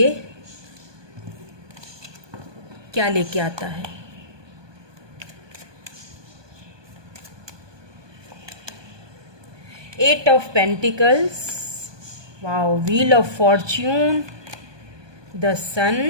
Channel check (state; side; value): late; left; 1.2 ms